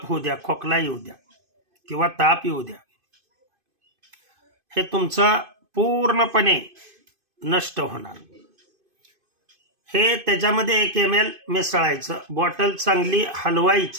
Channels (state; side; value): late; left; 2.5 ms